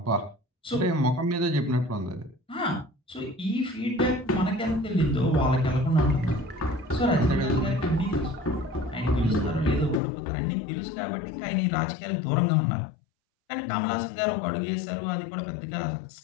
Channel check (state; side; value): drops out; right; at 10.0 s